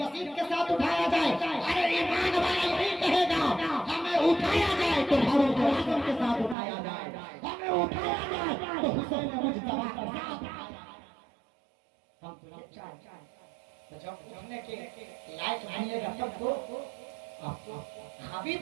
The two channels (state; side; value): drops out; left; at 6.6 s